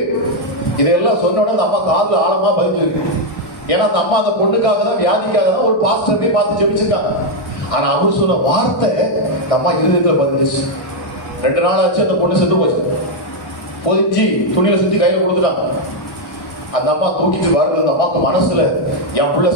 இதெல்லாம் சொன்ன உடனே அம்மா காதுல ஆழமா பதிஞ்சிருக்கு. ஏன்னா அந்த அம்மா அந்த பொண்ணுக்காக தான், வியாதிக்காக தான் ஒரு பாஸ்டரை பார்த்து ஜெபிச்சிருக்காங்க. ஆனா அவர் சொன்ன வார்த்தை அந்த அம்மா இருதயத்துல பதிஞ்சிச்சு. 2 நாள் ஆச்சு, அந்த பொண்ணு செத்து போச்சு. பொதிச்சு துணியில சுத்தி கையில கொடுத்துட்டாங்க. அந்த அம்மா தூக்கிட்டு வருது. அந்த அம்மாக்கு மனசுல என் புள்ள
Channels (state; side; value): late; right; 1.5 ms